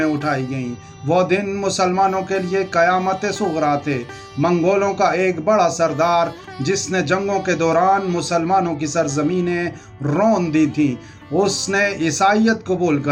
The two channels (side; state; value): both; identical; correlation 1.00